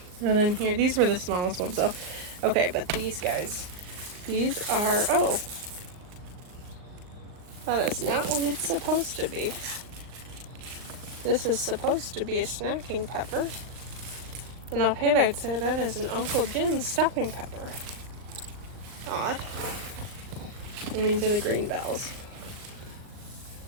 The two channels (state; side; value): late; left; 38 ms